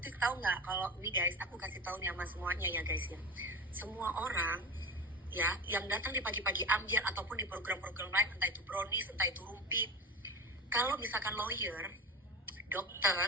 tahu nggak kalau ini guys, aku kasih tahu nih sama semuanya ya guys ya. Semua orang ya yang datang di pagi-pagi ambiar ataupun di program-program lain, entah itu brownies, entah itu rumpi, kalau misalkan lawyer,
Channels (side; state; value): both; normal; correlation 0.28